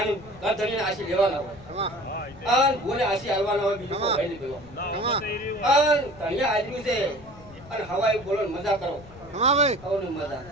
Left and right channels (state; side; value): noise; left; rumble, 21 dB below the sound